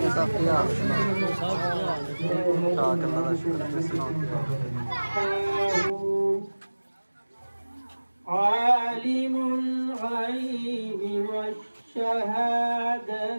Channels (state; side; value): inverted; both; correlation -1.00